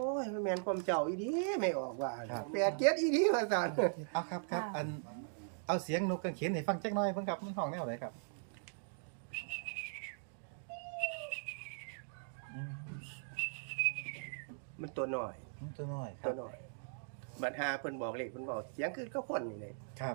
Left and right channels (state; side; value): silent; left; digital silence